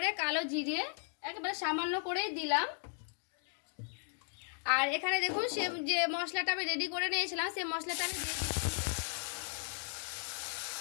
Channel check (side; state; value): right; silent; 54 dB below the other